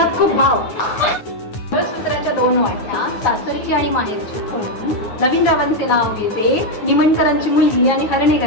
खूप भाव. सूत्राच्या 2 वाट्या, सासरची आणि माहेरची खून. नवीनरावांचे नाव घेते, निमणकरांची मुलगी आणि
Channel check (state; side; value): late; right; 9.6 ms